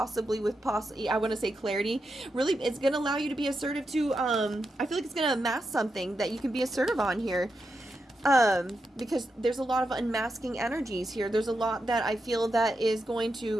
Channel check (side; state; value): both; normal; correlation 0.86